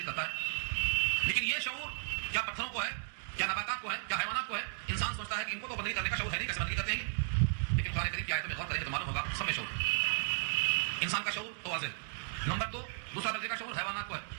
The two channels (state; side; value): silent; left; digital silence